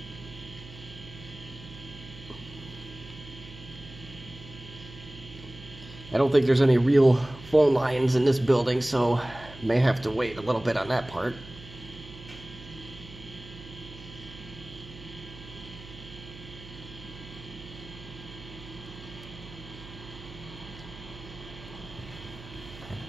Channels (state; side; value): noise; right; hum, 16 dB below the sound